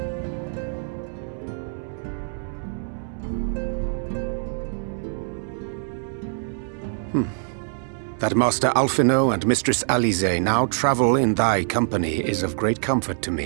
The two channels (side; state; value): left; silent; digital silence